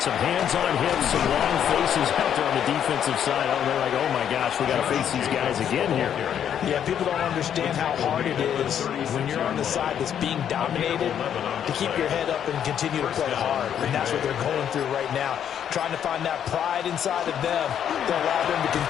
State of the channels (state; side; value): quieter; right; 9.2 dB